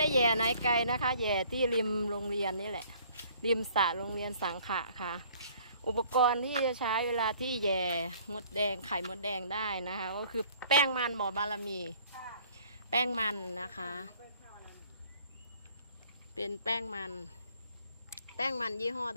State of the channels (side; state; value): both; inverted; correlation -0.56